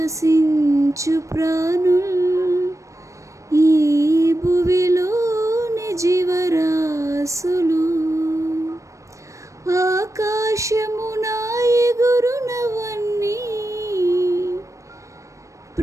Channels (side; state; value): left; late; 0.15 ms